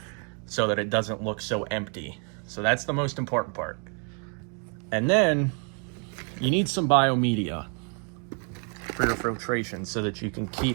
so that it doesn't look so empty. So that's the most important part. And then you need some biomedia for your filtration, so that you can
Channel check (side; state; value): left; quieter; 39.5 dB